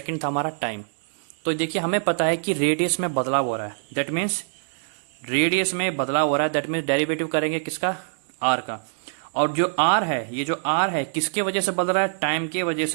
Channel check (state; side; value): silent; left; digital silence